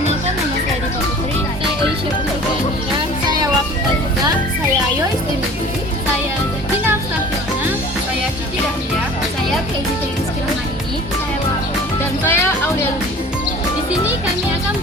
nama saya Diva Putri, saya Aisyah Putri Kehamilan, saya Wafita Juga, saya Ayo Istimewa, saya Zatina Afsafirna, saya Cici Dahlia, saya Keiji Rizky Rahmani, saya Laura, dan saya Aulia Lubis. Di sini kami akan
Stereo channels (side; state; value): both; normal; correlation 0.45